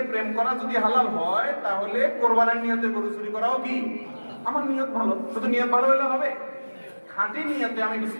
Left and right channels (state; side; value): inverted; both; correlation -1.00